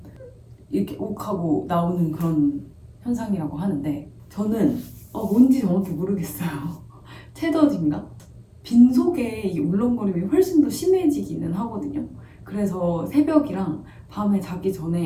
이렇게 욱하고 나오는 그런 현상이라고 하는데, 저는 뭔지 정확히 모르겠어요. 채더진가? 빈속에 이 울렁거림이 훨씬 더 심해지기는 하거든요. 그래서 새벽이랑 밤에 자기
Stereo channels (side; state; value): both; identical; correlation 1.00